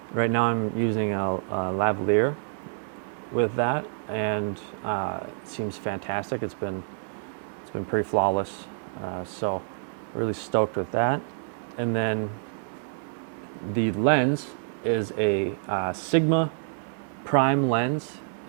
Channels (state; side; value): silent; left; 59 dB below the other